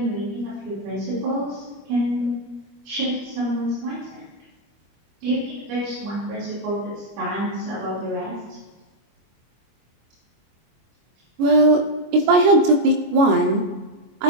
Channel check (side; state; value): left; late; 25 ms